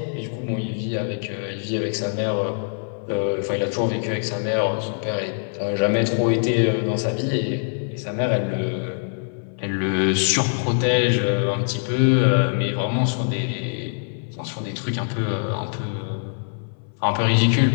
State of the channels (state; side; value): silent; right; 61 dB below the other